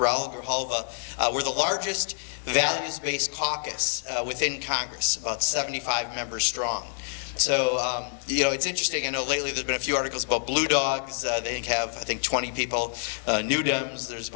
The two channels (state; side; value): silent; right; digital silence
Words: Grijalva. We're the largest values-based caucus within Congress, about 75 members strong. So, you know, it's interesting. I know lately there's been a few articles about Blue Dogs. They have, I think, 20 people. New Dems, there's